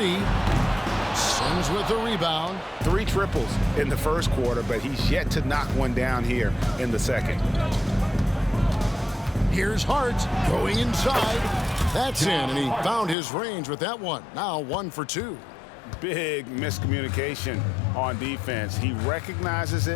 Sims with the rebound. 3 triples in the first quarter, but he's yet to knock one down here in the second. Here's Hart going inside. That's in, and he found his range with that one. Now 1 for 2. Big miscommunication on defense. He recognizes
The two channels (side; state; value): right; drops out; at 13.2 s